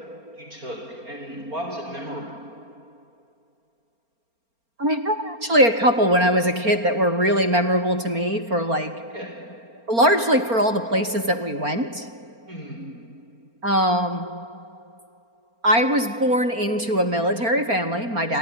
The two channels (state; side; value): late; left; 4.4 ms